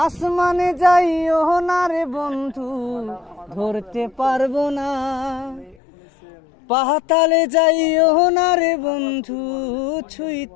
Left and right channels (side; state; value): right; drops out; at 5.8 s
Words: আসমানে যাইও না রে বন্ধু, ধরতে পারবো না। পাতালে যাইও না রে বন্ধু,